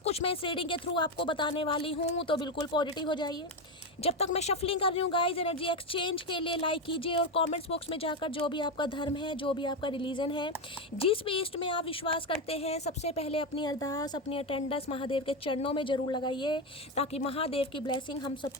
कुछ मैं इस रीडिंग के थ्रू आपको बताने वाली हूँ। तो बिल्कुल पॉजिटिव हो जाइए। जब तक मैं शफलिंग कर रही हूँ गाइस, एनर्जी एक्सचेंज के लिए लाइक कीजिए और कमेंट्स बॉक्स में जाकर जो भी आपका धर्म है, जो भी आपका रिलीजन है, जिस भी ईस्ट में आप विश्वास करते हैं, सबसे पहले अपनी अरदास, अपनी अटेंडेंस महादेव के चरणों में जरूर लगाइए, ताकि महादेव की ब्लेसिंग हम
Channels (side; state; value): both; normal; correlation 0.12